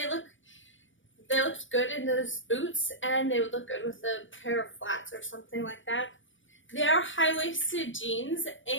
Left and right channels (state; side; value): late; right; 0.56 ms